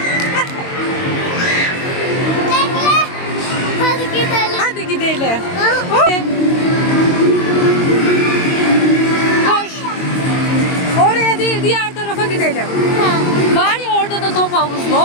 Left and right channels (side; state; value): right; late; 22 ms